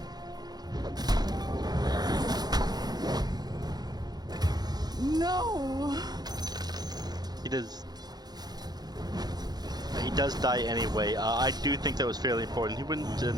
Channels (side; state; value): left; late; 0.19 ms